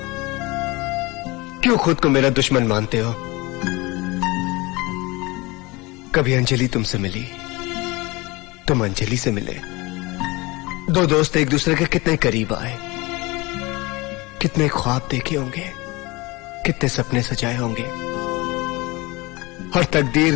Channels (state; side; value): quieter; right; 23.4 dB